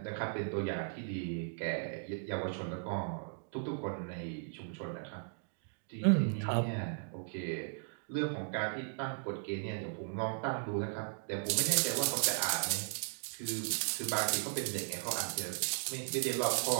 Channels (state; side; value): silent; left; digital silence